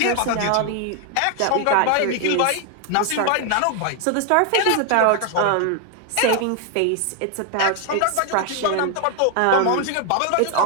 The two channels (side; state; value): both; different; correlation 0.00